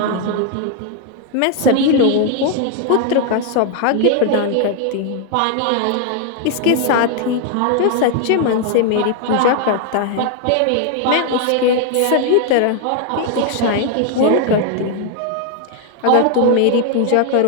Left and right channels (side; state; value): both; different; correlation 0.00